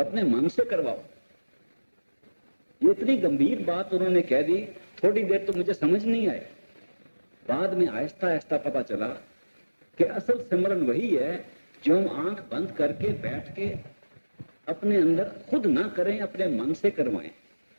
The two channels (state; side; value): inverted; both; correlation -1.00